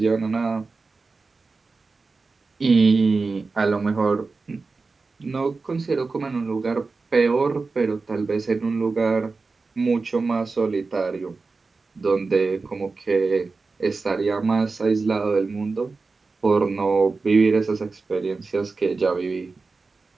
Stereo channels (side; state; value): left; quieter; 4.1 dB